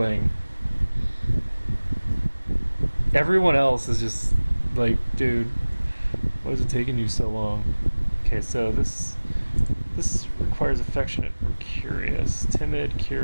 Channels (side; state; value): both; inverted; correlation -1.00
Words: Everyone else is just like, dude, why is it taking you so long? Okay, so this requires affectionate or curious. Timid,